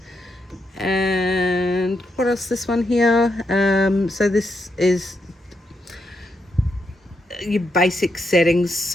And what else, this one here, so this is your basic settings,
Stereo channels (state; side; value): normal; both; correlation 0.81